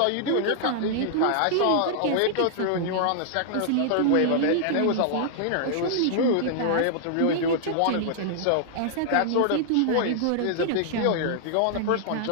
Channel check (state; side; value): different; both; correlation -0.01